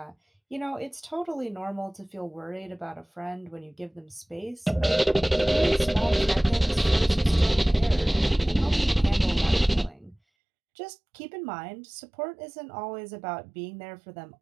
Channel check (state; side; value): drops out; left; at 10.2 s